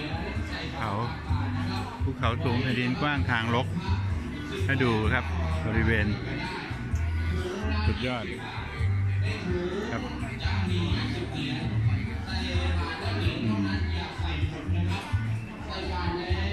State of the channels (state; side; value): identical; both; correlation 1.00